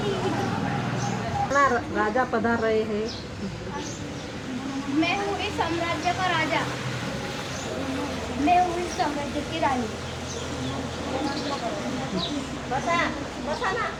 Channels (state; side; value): identical; both; correlation 1.00